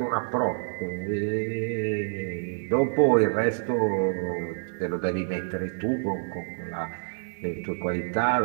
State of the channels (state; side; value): silent; left; digital silence